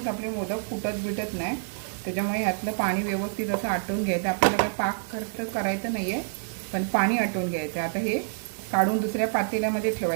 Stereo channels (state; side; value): silent; left; digital silence